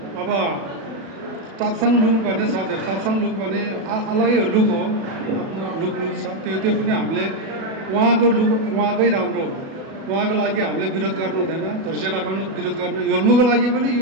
अब टाप्साङ लुक भन्ने छ। त्यो टाप्साङ लुक भने अलगै लुक हो। लुक छ त्यो पनि हामीले उहाँको लुक उहाँकै राम्रो हो। उहाँको लागि हामीले विरोध गर्नु हुँदैन। धोर्चेटाको विरोध गर्नु योल्मोको लागि पनि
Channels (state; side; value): late; left; 36 ms